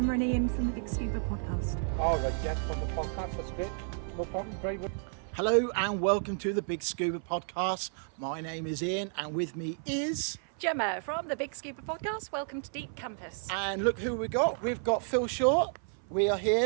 and Ian from the Big Scuba podcast. All right, yeah, from the podcast, that's good. No problem, very good. Hello and welcome to the Big Scuba podcast. My name is Ian and with me is... Gemma from the Big Scuba podcast. Welcome to Deep Campus. And look who we got. We've got Phil Short. We are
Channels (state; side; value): silent; left; 57 dB below the other